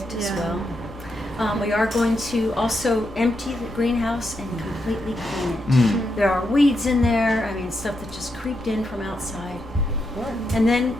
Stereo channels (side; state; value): both; normal; correlation 0.83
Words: as well. We are going to also empty the greenhouse and completely clean it. There are weeds in there, I mean stuff that just creeped in from outside. And then